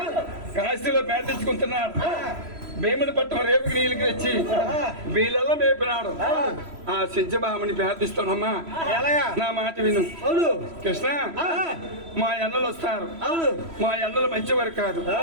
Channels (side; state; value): left; late; 3.0 ms